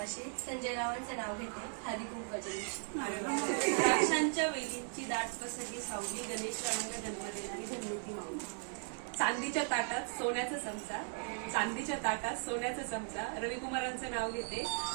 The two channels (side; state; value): left; silent; 53 dB below the other